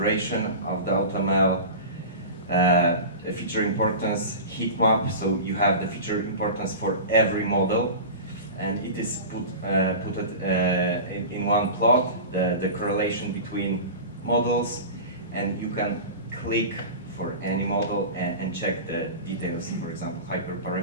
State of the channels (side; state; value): both; inverted; correlation -0.31